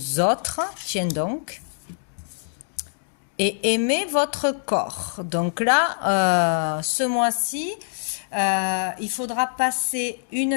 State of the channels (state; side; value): silent; right; digital silence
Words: autres, tiens donc, et aimer votre corps. Donc là, ce mois-ci, il faudra passer